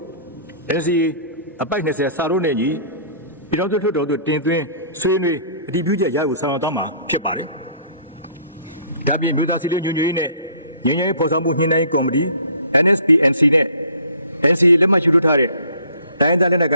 NCA အပိုက်20စာလုံးနဲ့ညီပြည်တော်စုလွှတ်တော်သို့တင်သွင်းဆွေးနွေးအတည်ပြုချက်ရယူဆောင်ရွက်သွားမှာဖြစ်ပါတယ်။ဒါပြင်မြို့သားစီလုံးညွှန်ရေးနဲ့ညီညွတ်ရေးဖော်ဆောင်မှုညှိနှိုင်းကော်မတီ NSPNC နဲ့ NCA လက်မှတ်ယူထားတဲ့တိုင်းဒေသလက်နက်ကိ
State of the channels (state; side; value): inverted; both; correlation -0.53